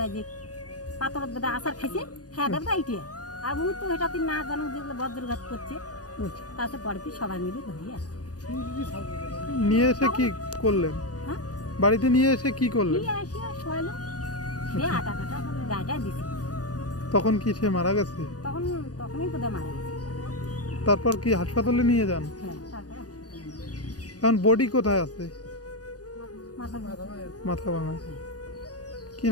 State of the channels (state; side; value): late; right; 0.68 ms